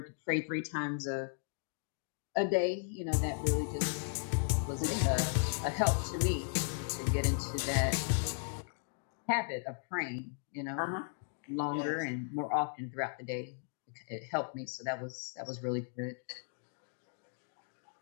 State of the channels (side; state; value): right; silent; 54 dB below the other